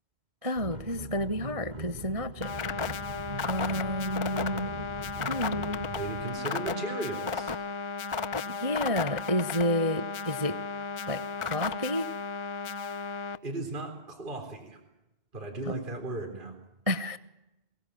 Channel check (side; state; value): left; late; 2.1 ms